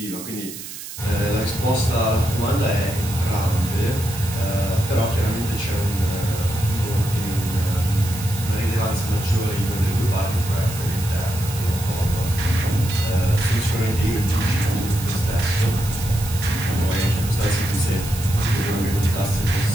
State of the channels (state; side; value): noise; right; hiss, 11 dB below the sound